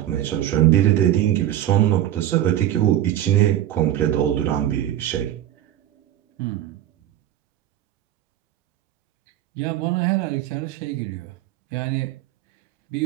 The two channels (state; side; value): quieter; left; 12.4 dB